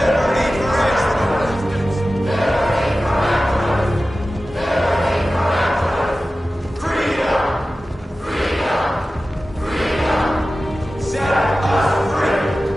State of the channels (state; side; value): normal; both; correlation 0.95